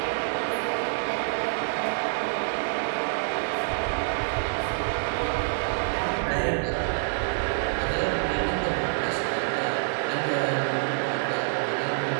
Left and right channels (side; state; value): left; silent; digital silence